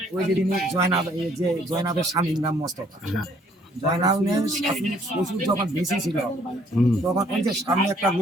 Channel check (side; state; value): both; normal; correlation 0.63